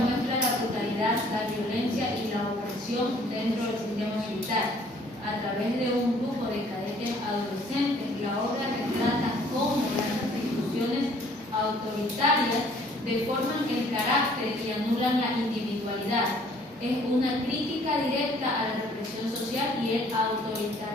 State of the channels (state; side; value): normal; both; correlation 0.58